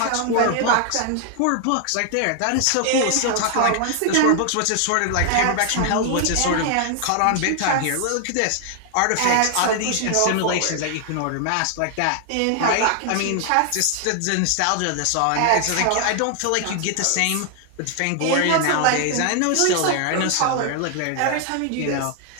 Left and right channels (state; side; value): different; both; correlation 0.00